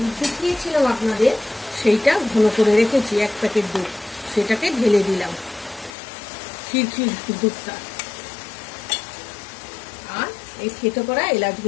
দেখিয়েছিলাম আপনাদের, সেইটা ঘন করে রেখেছি 1 প্যাকেট দুধ, সেটাকে ঢেলে দিলাম, ক্ষীর দুধটা। আর এই থেতো করা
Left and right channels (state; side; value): drops out; right; at 5.9 s